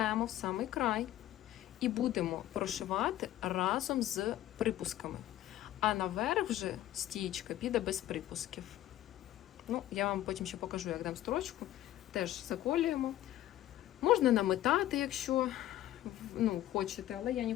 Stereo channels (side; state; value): right; quieter; 13.6 dB